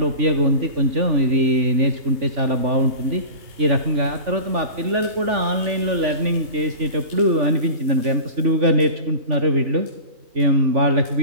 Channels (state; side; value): late; left; 3.4 ms